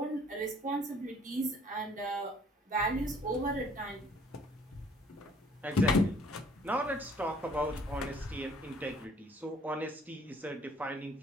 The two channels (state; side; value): normal; both; correlation 0.58